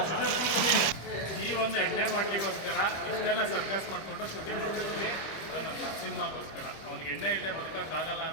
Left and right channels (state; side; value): late; right; 25 ms